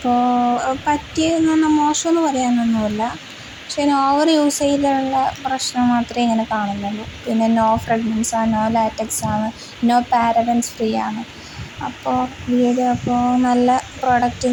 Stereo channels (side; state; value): both; identical; correlation 1.00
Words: പറ്റിയെന്ന് പറഞ്ഞാൽ മോശമെന്ന് പറയാനൊന്നുമില്ല. പക്ഷേ ഓവർ യൂസ് ചെയ്തുള്ള പ്രശ്നം മാത്രമേ ഇങ്ങനെ കാണുന്നുള്ളൂ. പിന്നെ നോ ഫ്രാഗ്രൻസാണ്, നോ ലാറ്റക്സാണ്, നോ പാരബൻസ് ഫ്രീ ആണ്. അപ്പോൾ നല്ല പ്രൊഡക്റ്റ്